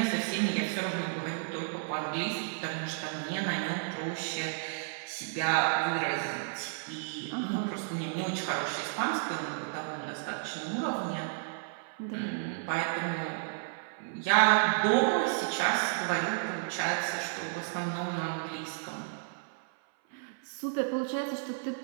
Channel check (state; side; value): silent; left; 56 dB below the other